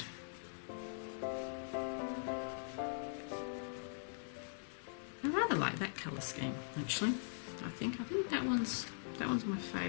colour scheme actually. I think that one's my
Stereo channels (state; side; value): silent; right; digital silence